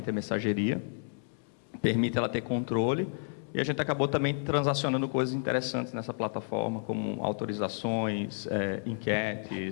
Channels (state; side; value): silent; right; 57 dB below the other